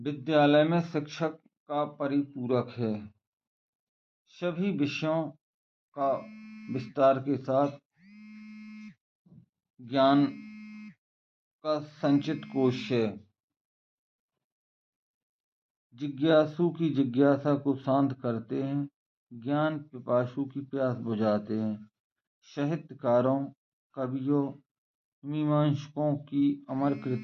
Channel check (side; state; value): both; identical; correlation 1.00